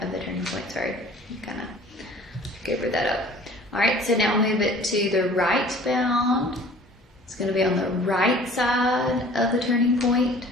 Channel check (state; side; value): normal; both; correlation 0.48